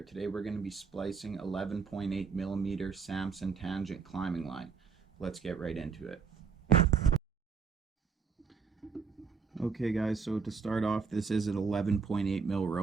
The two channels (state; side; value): quieter; left; 5.6 dB